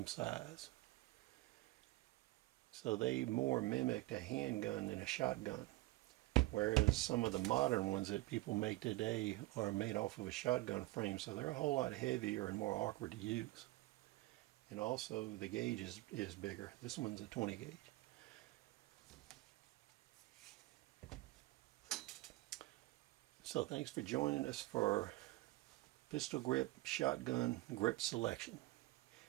size. So they more mimicked a handgun than a shotgun. Whereas some of the modern ones that people make today are made off of a shotgun frame, so they're a whole lot heavier and more awkward to use. And also the gauge is bigger. This one's a 20 gauge. So thanks for joining us for pistol grip shotgun grip selection.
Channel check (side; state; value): left; quieter; 19.6 dB